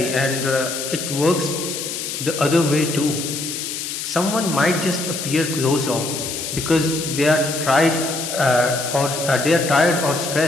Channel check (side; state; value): left; noise; hiss, 5 dB below the sound